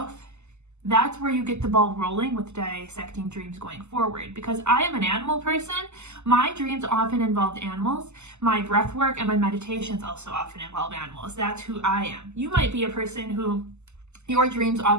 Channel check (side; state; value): left; late; 0.83 ms